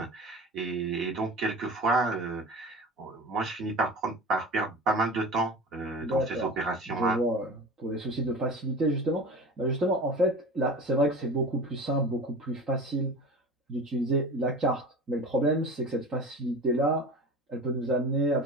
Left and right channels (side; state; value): both; normal; correlation 0.34